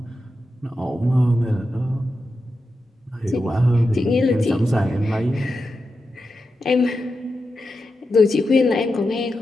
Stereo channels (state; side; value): normal; both; correlation 0.89